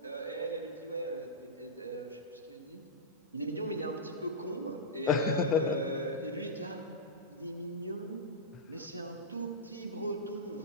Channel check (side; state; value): both; normal; correlation -0.13